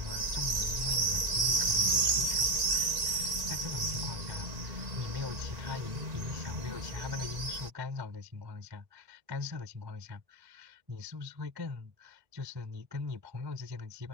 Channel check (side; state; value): left; late; 1.9 ms